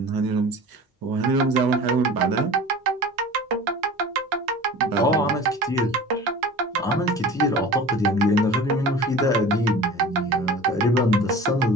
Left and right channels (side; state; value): both; normal; correlation 0.39